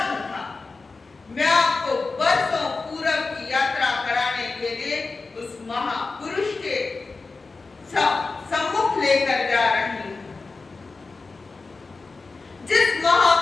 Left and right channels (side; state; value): right; quieter; 4.0 dB